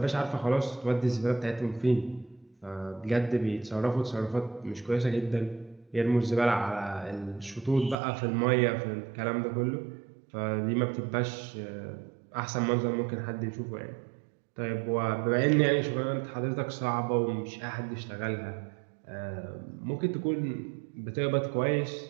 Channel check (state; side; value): drops out; left; at 8.0 s